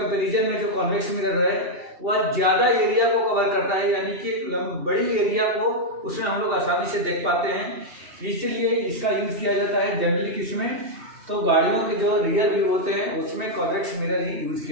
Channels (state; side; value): late; left; 2.7 ms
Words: में जो कॉन्वेक्स मिरर है वह ज्यादा एरिया को कवर करता है, यानी कि बड़ी एरिया को उसमें हम लोग आसानी से देख पाते हैं। इसलिए इसका यूज किया जाता है जनरली किसमें? तो गाड़ियों के जो रियर व्यू होते हैं उसमें कॉन्वेक्स मिरर ही यूज